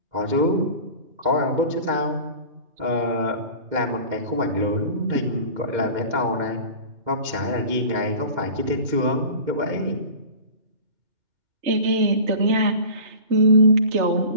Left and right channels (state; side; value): late; left; 2.2 ms